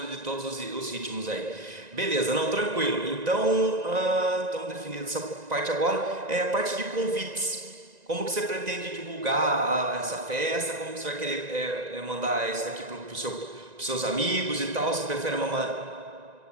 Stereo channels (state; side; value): late; left; 1.9 ms